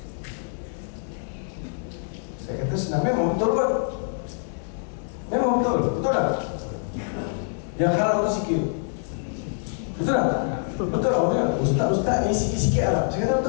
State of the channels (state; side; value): silent; right; 62 dB below the other